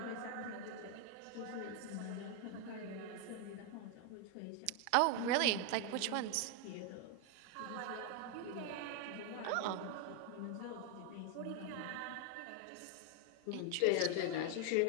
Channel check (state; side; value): different; both; correlation 0.01